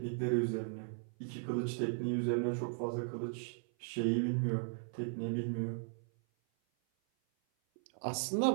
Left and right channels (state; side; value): silent; left; 53 dB below the other